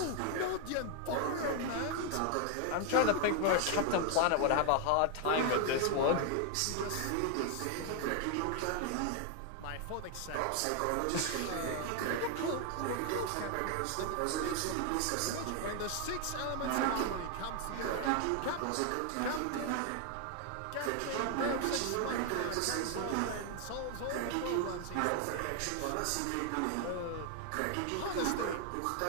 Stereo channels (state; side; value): different; both; correlation 0.00